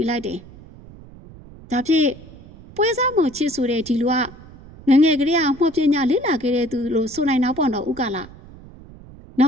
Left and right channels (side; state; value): right; noise; rumble, 20 dB below the sound